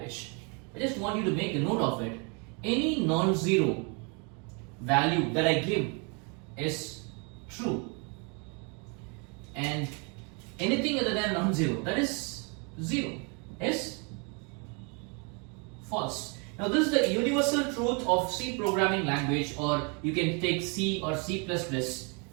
I just want you to make a note of it. Any non-zero value that I give is true, and anything other than non-zero, that is 0, is false. Now this is the universal truth of C programming language, or you can take C or C++,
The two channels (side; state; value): left; quieter; 34.0 dB